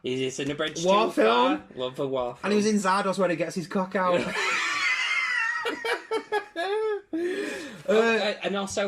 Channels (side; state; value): both; identical; correlation 1.00